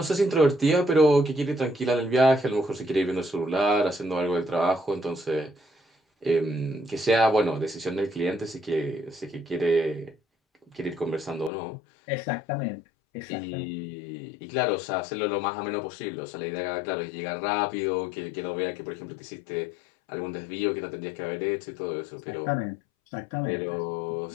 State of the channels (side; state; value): right; drops out; at 11.5 s